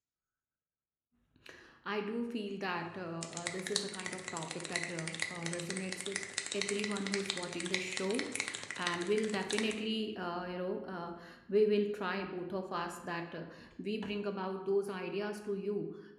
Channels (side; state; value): both; identical; correlation 1.00